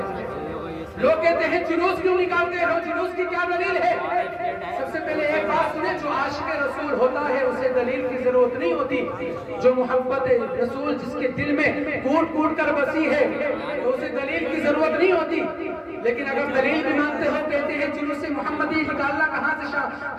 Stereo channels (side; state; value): both; identical; correlation 1.00